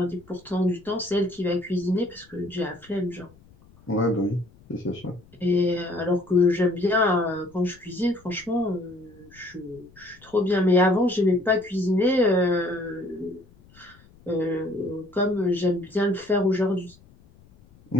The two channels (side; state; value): left; noise; rumble, 26 dB below the sound